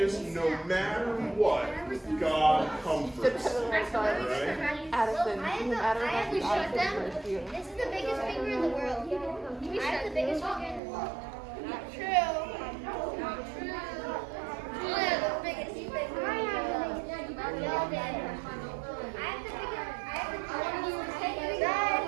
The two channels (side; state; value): left; drops out; at 10.8 s